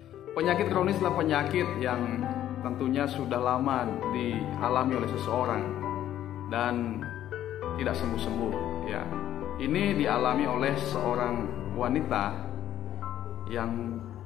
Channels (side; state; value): right; quieter; 11.9 dB